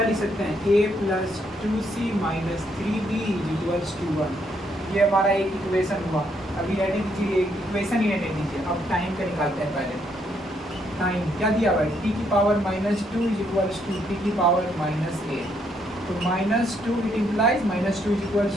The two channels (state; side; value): normal; both; correlation 0.73